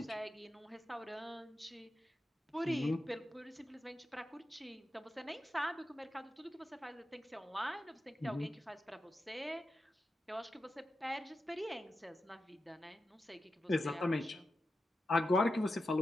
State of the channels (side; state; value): both; normal; correlation 0.90